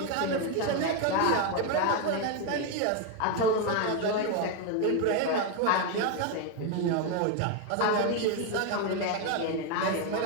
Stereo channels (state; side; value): different; both; correlation 0.02